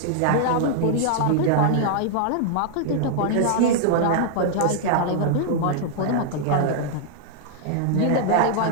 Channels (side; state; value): both; different; correlation -0.01